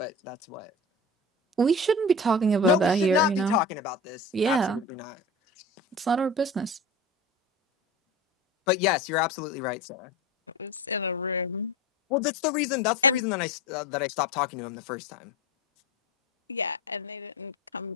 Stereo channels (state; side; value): normal; both; correlation 0.32